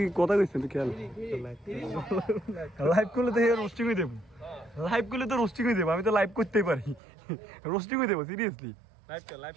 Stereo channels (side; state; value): left; drops out; at 7.0 s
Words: কথা কইছিস তুই খেল লাইভ করলে তো রোস্টিং হয়ে দেব লাইভ করলে তো রোস্টিং হয়ে দেব আমি তো লাইভ করতেই পারি রোস্টিং হয়ে দেব সিরিয়াসলি লাইভ